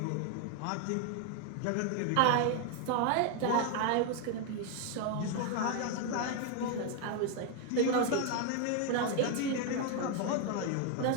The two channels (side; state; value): both; different; correlation 0.01